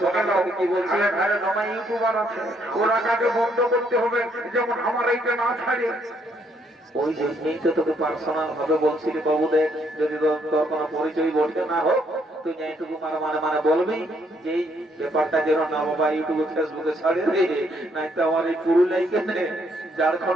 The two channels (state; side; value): normal; both; correlation 0.71